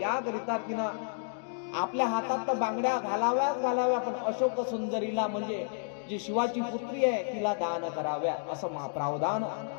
तिनं आपल्या हातात तर बांगड्या घालाव्या, पण अशोक सुंदरीला म्हणजे जी शिवाची पुत्री आहे तिला दान कराव्या, असं प्रावधान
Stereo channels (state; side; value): silent; right; digital silence